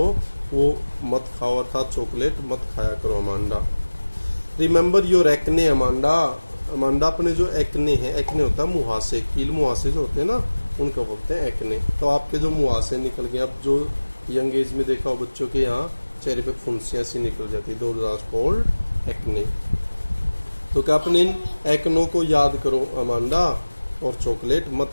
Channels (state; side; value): inverted; both; correlation -1.00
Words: वो मत खाओ, अर्थात चॉकलेट मत खाया करो Amanda. Remember your acne Amanda, Amanda अपने जो एक्ने हैं, एक्ने होता है मुहासे, कील मुहासे जो होते हैं ना, उनको बोलते हैं एक्ने। तो आपके जो मुहासे निकल गए, अब जो यंग एज में देखा हो बच्चों के यहाँ चेहरे पे फुंसियाँ सी निकल जाती है, दोज आर कॉल्ड एक्ने। तो क्या अपने इन एक्नों को याद करो अमांडा, और चॉकलेट मत